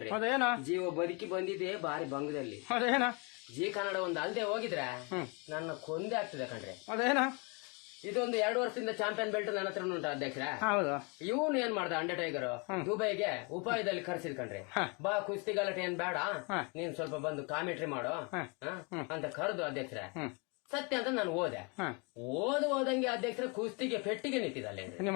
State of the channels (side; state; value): right; quieter; 32.1 dB